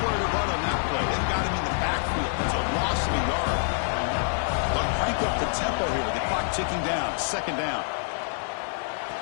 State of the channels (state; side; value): silent; right; digital silence